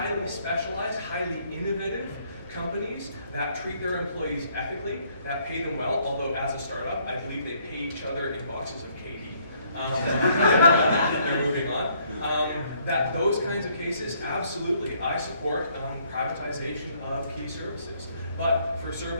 specialized, highly innovative companies that treat their employees ethically, that pay them well, although as a startup, I believe they pay each other in boxes of KD. They're moving on. That those kinds of cases, absolutely, I support privatization of key services. But for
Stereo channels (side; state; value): both; inverted; correlation -0.66